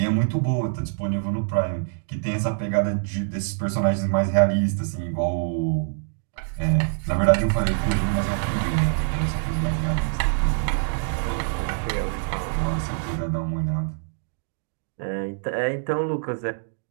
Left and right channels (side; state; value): left; silent; digital silence